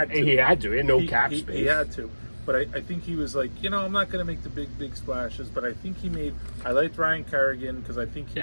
to. He had to. He had no cap space. He had to. But I think he was like, I'm not going to make the big splashes. But I think I liked Ryan Kerrigan because I think he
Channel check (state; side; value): inverted; both; correlation -1.00